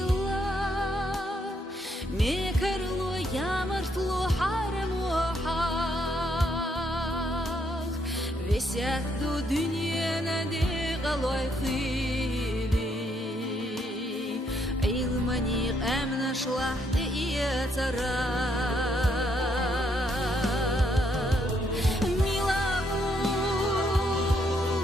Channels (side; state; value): both; normal; correlation 0.73